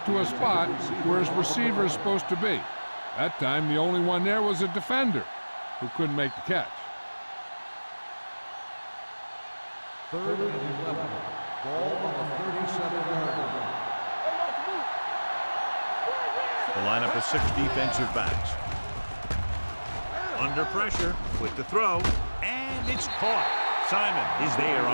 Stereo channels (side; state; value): both; inverted; correlation -1.00